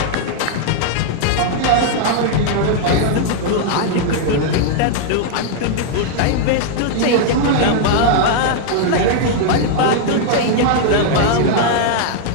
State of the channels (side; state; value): both; different; correlation -0.01